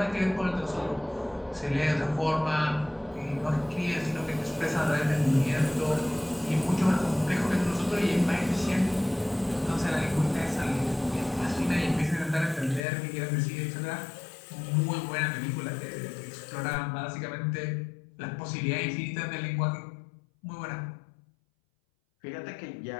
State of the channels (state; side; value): drops out; right; at 12.8 s